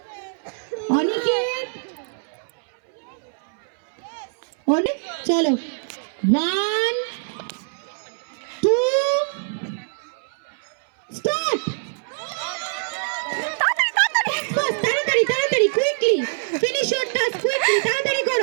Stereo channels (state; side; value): silent; left; 62 dB below the other